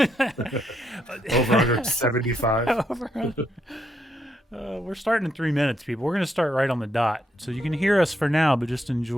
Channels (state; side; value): normal; both; correlation 0.77